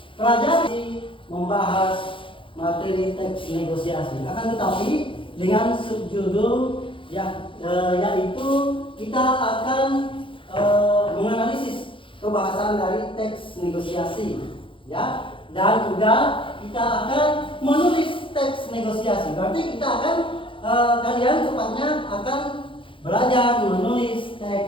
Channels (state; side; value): late; right; 0.25 ms